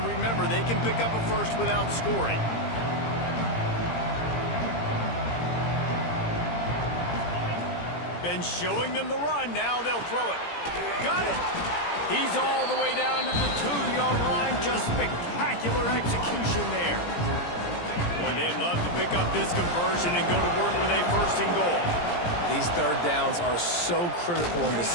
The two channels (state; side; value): late; right; 17 ms